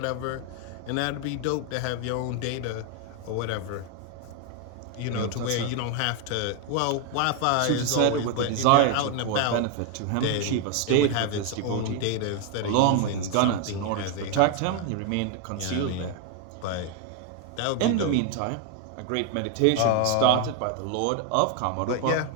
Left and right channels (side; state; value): both; different; correlation 0.01